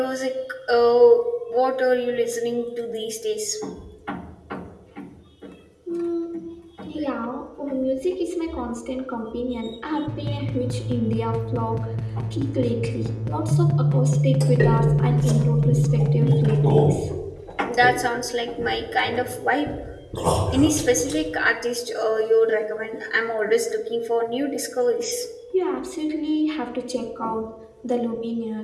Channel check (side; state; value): both; identical; correlation 1.00